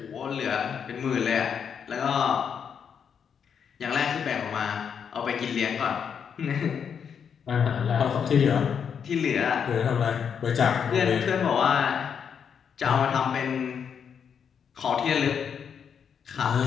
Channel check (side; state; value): right; quieter; 7.3 dB